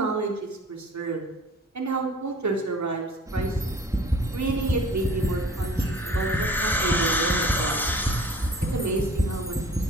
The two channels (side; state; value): both; normal; correlation 0.48